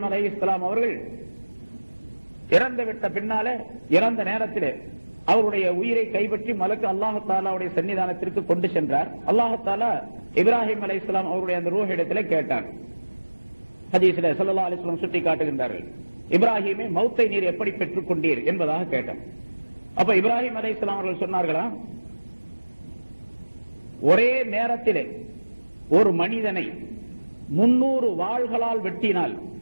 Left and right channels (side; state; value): both; inverted; correlation -1.00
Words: அலைஹிஸ்ஸலாம் அவர்கள் இறந்து விட்ட பின்னாலே, இறந்த நேரத்திலே அவருடைய உயிரை கைப்பற்றி மலக்கு அல்லாஹ் தஆலாவுடைய சன்னிதானத்திற்கு கொண்டு சென்றார். அல்லாஹ் தஆலா இப்ராஹிம் அலைஹிஸ்ஸலாம் அவருடைய அந்த ரூஹ் இடத்திலே கேட்டார். ஹதீஸிலே ஸல்லல்லாஹு அலைஹி வஸல்லம் சுட்டி காட்டுகின்றார்கள், இப்ராஹிமே மௌத்தை நீர் எப்படி பெற்றுக் கொண்டீர் என்பதாக கேட்டார். அப்ப இப்ராஹிம் அலைஹிஸ்ஸலாம் அவர்கள் சொன்னார்களா, ஒரே நேரத்திலே ஒரு மனிதனை 300 வாள்களால் வெட்டினால்